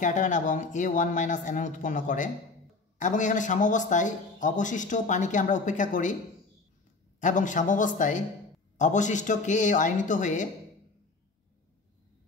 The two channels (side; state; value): right; quieter; 3.8 dB